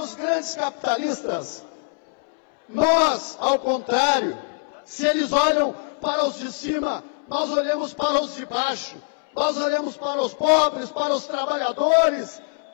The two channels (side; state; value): right; silent; 63 dB below the other